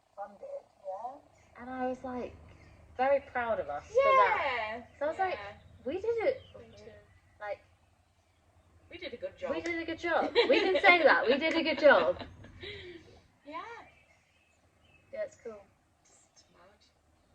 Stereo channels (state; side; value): identical; both; correlation 1.00